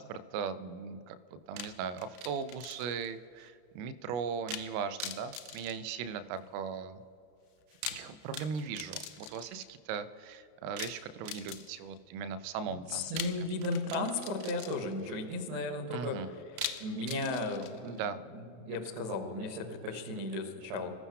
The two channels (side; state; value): left; late; 32 ms